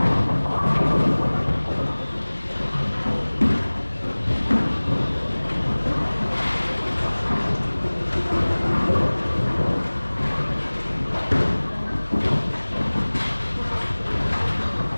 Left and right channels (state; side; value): inverted; both; correlation -1.00